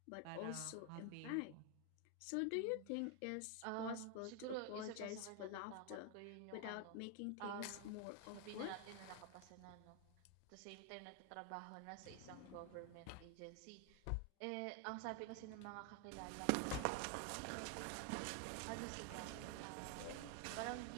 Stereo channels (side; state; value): both; different; correlation 0.01